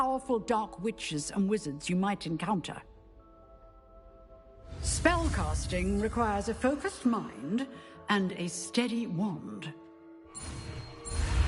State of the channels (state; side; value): identical; both; correlation 1.00